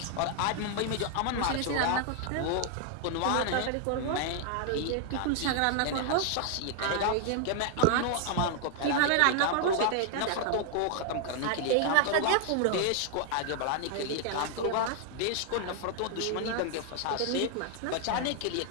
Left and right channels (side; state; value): both; different; correlation 0.00